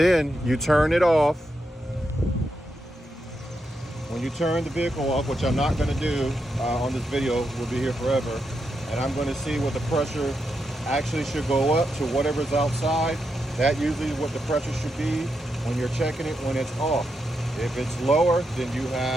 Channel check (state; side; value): normal; both; correlation 0.84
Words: you turn it off. When you turn the vehicle off, which I'm not going to do on this video, we'll be here forever. And I'm going to see what the pressure actually should go up to whatever's outside. That usually is what the pressure should be when you're checking it when it's off. If it's lower, then you